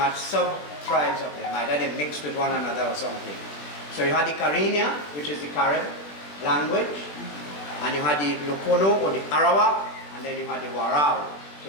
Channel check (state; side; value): late; right; 20 ms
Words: sub-tribes of them, either they mixed with one another or something. So you had the Cariña, which is the Carib language, and you had the Locono or the Arawak, and then you had the Warao.